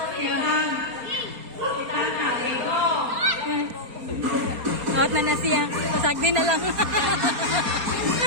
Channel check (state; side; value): late; left; 4.2 ms